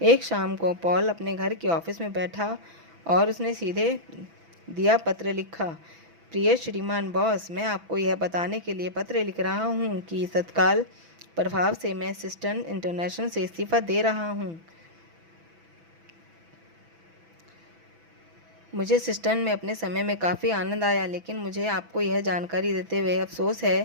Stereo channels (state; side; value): late; left; 6.0 ms